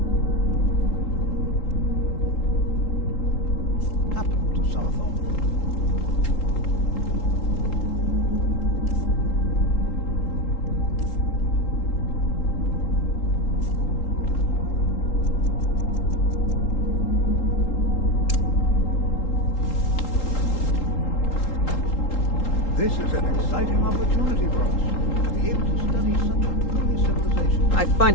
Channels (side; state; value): right; late; 3.8 ms